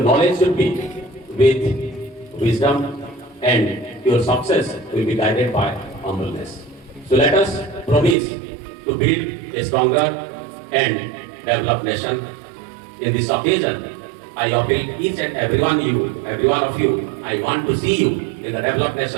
should be with wisdom, and your success will be guided by humbleness. So let us promise to build a stronger and developed nation. In this occasion, I appeal each and every one of you, I want to see you in the developed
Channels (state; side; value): drops out; left; at 8.2 s